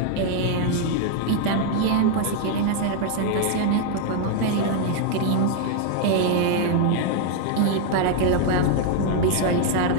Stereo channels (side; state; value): both; different; correlation 0.00